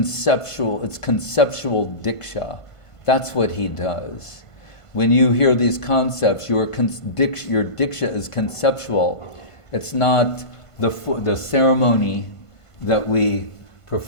it's conceptual diksha. That's what he does. When you hear these concepts, your diksha is conceptual. It's not the ceremony that we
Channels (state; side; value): late; right; 1.5 ms